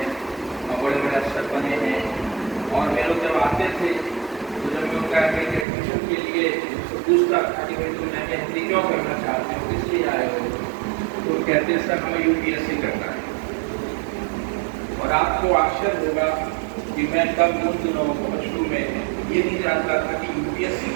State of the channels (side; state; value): left; drops out; at 5.7 s